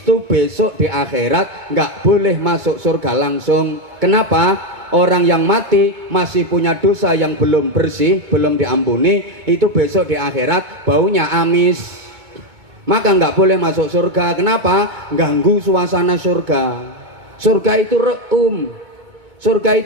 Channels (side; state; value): left; late; 2.2 ms